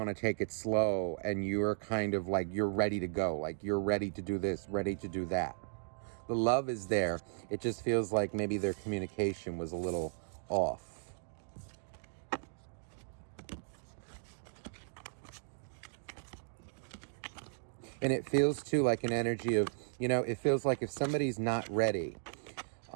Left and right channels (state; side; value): silent; left; digital silence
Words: to take it slow and you're kind of like, you're ready to go. Like you're ready to do this, ready to do that. The love is there. It just feels like maybe their communication was a little off. And it feels too like an energy of, it feels like if somebody's not ready